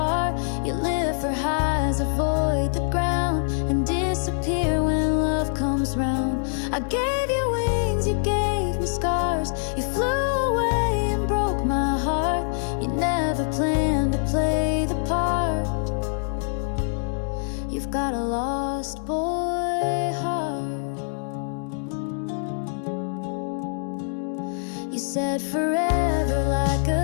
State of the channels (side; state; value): right; silent; digital silence